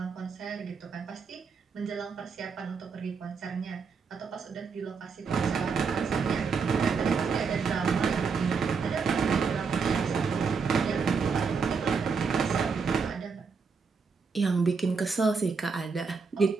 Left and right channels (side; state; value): left; quieter; 5.3 dB